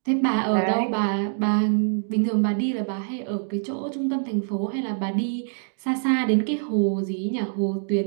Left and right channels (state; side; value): silent; left; digital silence